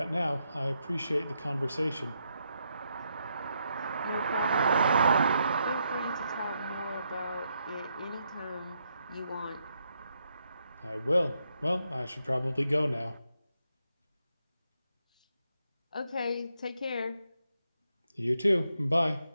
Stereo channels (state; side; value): inverted; both; correlation -0.79